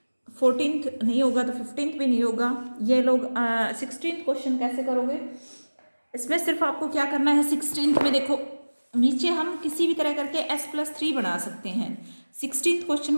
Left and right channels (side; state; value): both; inverted; correlation -1.00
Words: 14th नहीं होगा तो 15th भी नहीं होगा। ये लोग 16th क्वेश्चन कैसे करोगे, इसमें सिर्फ आपको क्या करना है, 16th में देखो नीचे हम किसी भी तरह करके s+3 बना सकते हैं। 16th क्वेश्चन